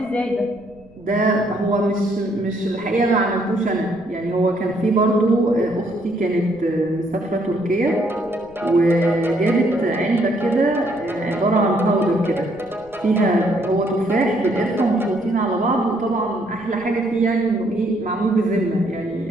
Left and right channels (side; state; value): right; noise; rumble, 26 dB below the sound